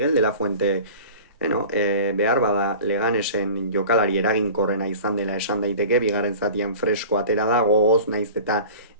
de la Fuente behar bada Leganesen jokalari eraginkorrena izan dela esan daiteke, bigarren zatian fresko atera da, gogoz, naiz eta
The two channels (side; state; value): both; inverted; correlation -0.40